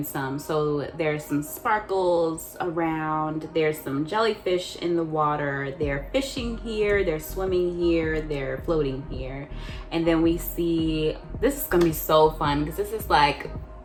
some. So there's some sparkles around, there's some jellyfish in the water, they're fishing here, they're swimming here, they're floating here. And then we see, this is gonna be so fun because this is like,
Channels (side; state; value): both; identical; correlation 1.00